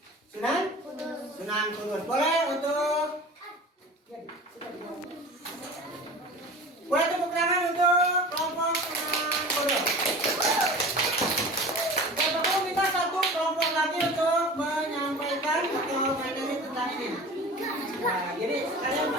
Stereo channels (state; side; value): normal; both; correlation 0.38